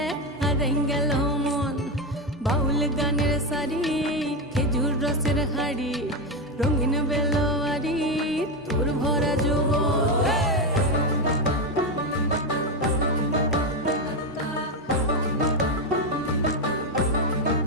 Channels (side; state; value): both; normal; correlation 0.11